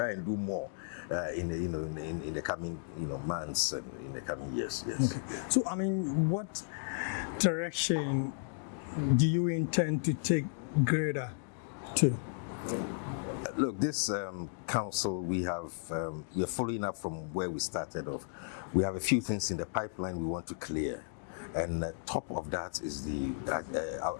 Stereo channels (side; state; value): right; silent; digital silence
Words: and do more in the coming months and in the coming years. Yes. Okay. So I mean, what direction do you intend to take GREDA to? Look, this council, we are following up from where we started off. We have a few things in the pipeline we want to clear, and top of that is the